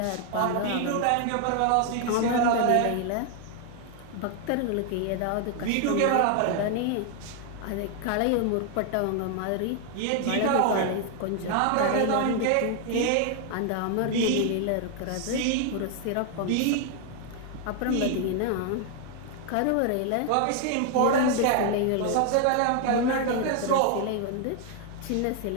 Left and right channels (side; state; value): both; different; correlation 0.00